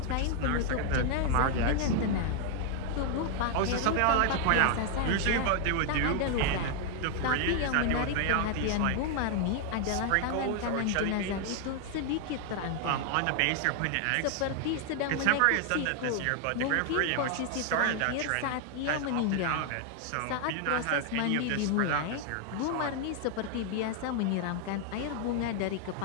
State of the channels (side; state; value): both; different; correlation 0.00